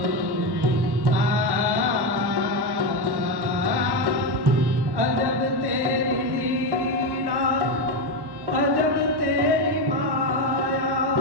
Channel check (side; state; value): left; late; 1.1 ms